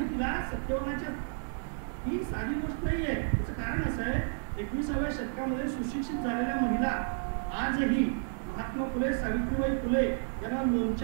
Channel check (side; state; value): left; silent; digital silence